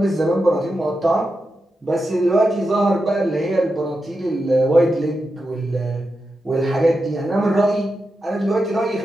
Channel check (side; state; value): both; normal; correlation 0.88